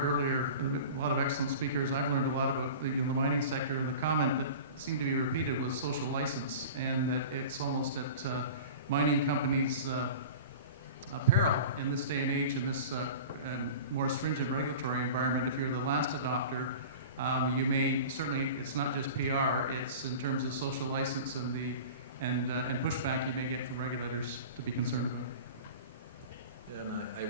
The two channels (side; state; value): both; inverted; correlation -0.37